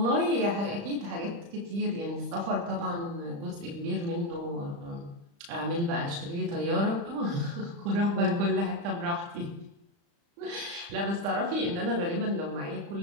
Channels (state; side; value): late; left; 35 ms